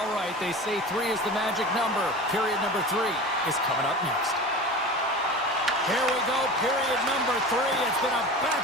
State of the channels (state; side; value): normal; both; correlation 0.33